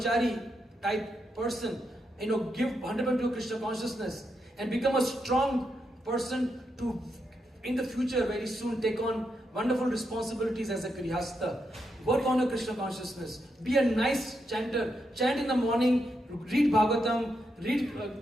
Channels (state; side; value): normal; both; correlation 0.83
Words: type person, give 100% to Krishna consciousness and become a strong person to, in the future, very soon take on wonderful responsibilities as a Grihastha. Work on your Krishna consciousness. Be a nice chanter. Chant in the morning, read Bhagavatam, read